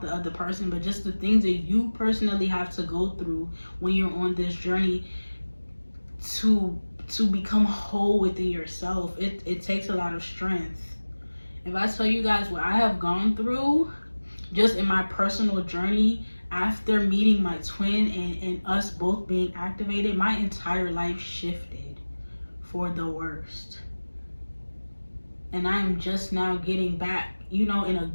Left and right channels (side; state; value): both; inverted; correlation -1.00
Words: the other person, but just the things that you personally have to go through when you're on this journey to become whole within yourself. It takes a lot of strength. If I tell you guys what I have gone through just in my personal journey after meeting my twin and us both being activated, my entire life shifted for the worst. And I am just now getting back, you know, in a